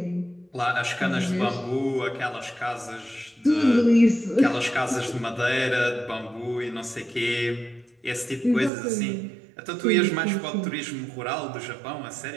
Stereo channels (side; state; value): left; drops out; at 8.7 s